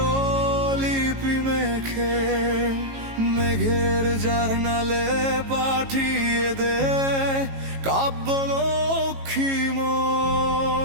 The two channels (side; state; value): left; late; 18 ms